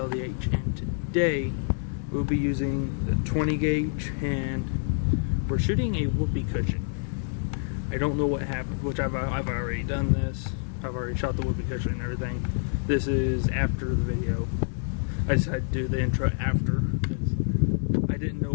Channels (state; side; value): silent; right; digital silence